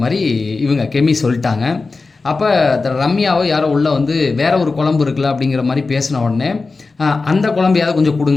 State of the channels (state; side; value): quieter; right; 3.9 dB